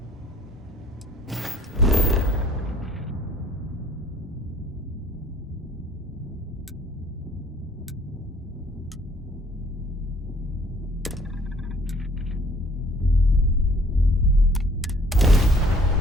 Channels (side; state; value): both; normal; correlation 0.57